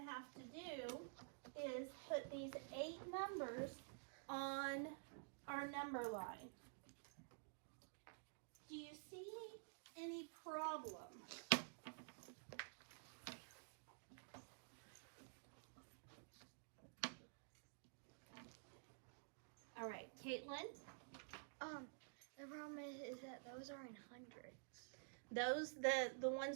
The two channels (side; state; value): left; silent; digital silence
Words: have to do is put these 8 numbers on our number line. Do you see any problem? All right, Caitlin? The problem is that those are in hundreds. Those, the